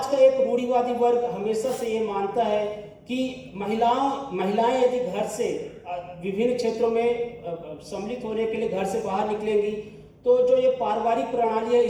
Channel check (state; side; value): identical; both; correlation 1.00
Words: का एक रूढ़िवादी वर्ग हमेशा से ये मानता है कि महिलाएं यदि घर से विभिन्न क्षेत्रों में सम्मिलित होने के लिए घर से बाहर निकलेंगी तो जो ये पारिवारिक प्रणाली है